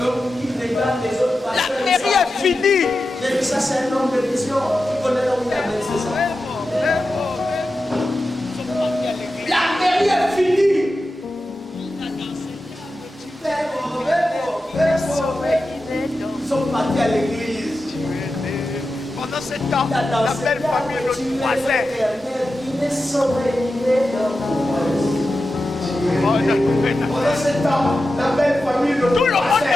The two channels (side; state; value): both; normal; correlation 0.92